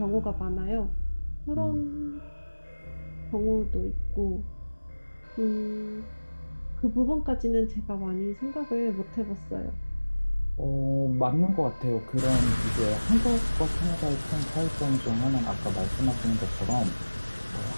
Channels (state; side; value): inverted; both; correlation -1.00